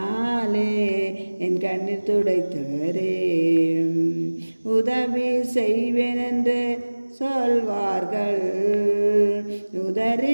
என் கண்ணீர் துடைத்தவரே. உதவி செய்வேன் என்று சொல்வார்கள்,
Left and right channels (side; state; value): both; inverted; correlation -1.00